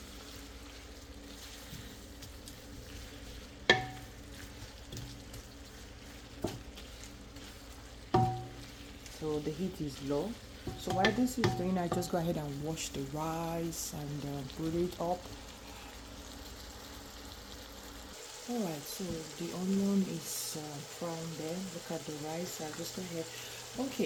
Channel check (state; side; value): identical; both; correlation 1.00